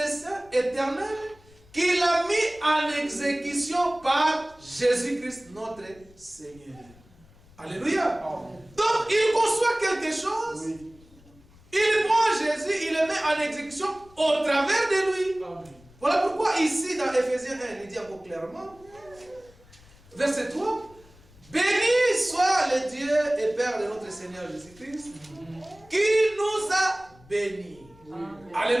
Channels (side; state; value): left; noise; rumble, 26 dB below the sound